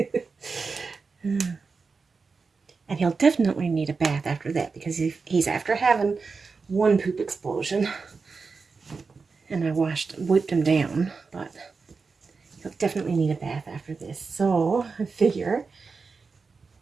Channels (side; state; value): left; quieter; 4.7 dB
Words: And he'll definitely need a bath after that because he's after having one poop explosion. And I wiped him down, but he'll definitely need a bath after this. So I figure,